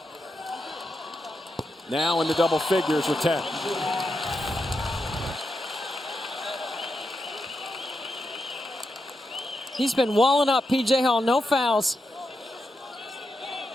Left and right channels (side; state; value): both; normal; correlation 0.86